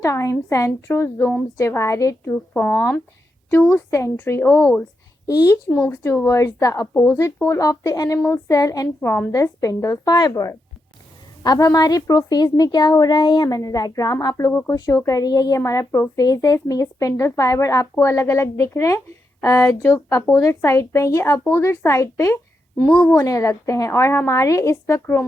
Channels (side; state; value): both; normal; correlation 0.84